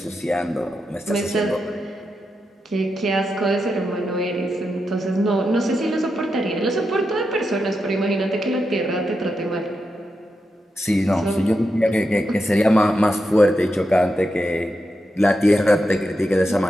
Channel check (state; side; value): normal; both; correlation 0.87